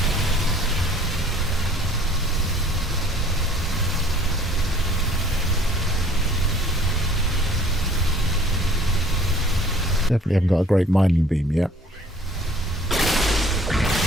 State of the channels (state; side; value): normal; both; correlation 0.54